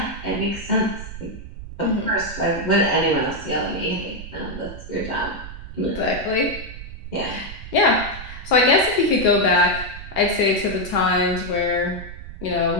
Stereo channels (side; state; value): right; noise; rumble, 12 dB below the sound